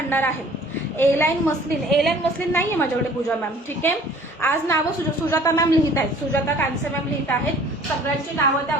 आहे. ए लाईन मस्लिन नाहीये माझ्याकडे पूजा मॅम, ठीक आहे. आज नावं सुजाता मॅम लिहित आहेत, सुजाता कांसे मॅम लिहित आहेत. सगळ्यांची नावं त्या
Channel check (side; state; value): both; normal; correlation 0.51